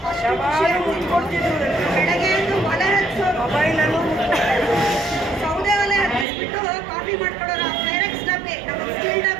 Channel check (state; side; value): drops out; left; at 6.2 s